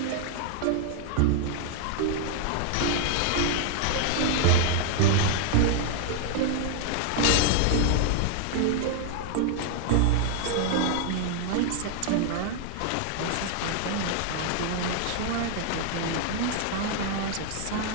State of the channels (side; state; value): both; different; correlation 0.00